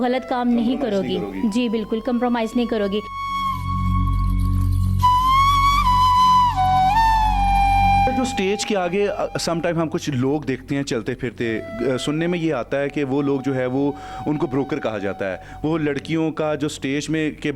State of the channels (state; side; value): identical; both; correlation 1.00